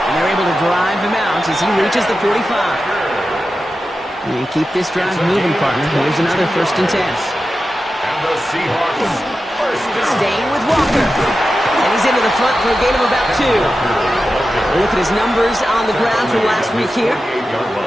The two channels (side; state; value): both; normal; correlation 0.92